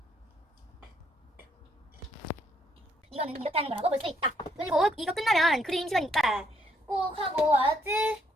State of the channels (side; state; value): both; normal; correlation 0.70